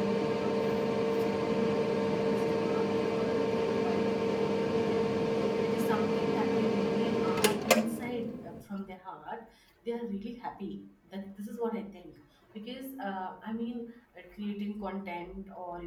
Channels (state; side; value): identical; both; correlation 1.00